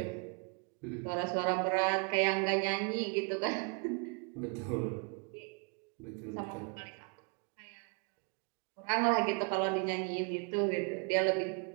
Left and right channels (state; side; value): quieter; left; 36.5 dB